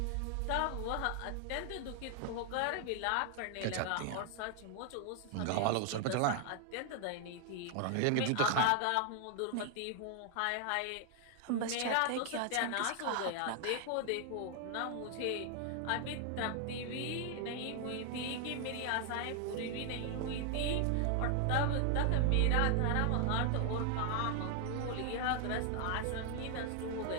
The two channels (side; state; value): both; different; correlation 0.00